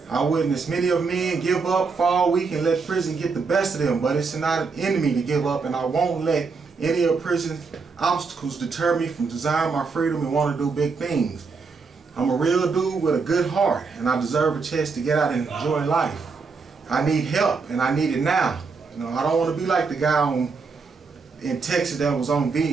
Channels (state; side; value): quieter; left; 4.7 dB